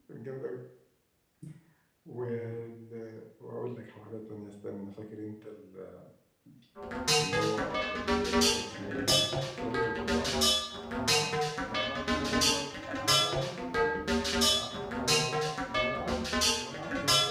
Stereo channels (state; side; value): identical; both; correlation 1.00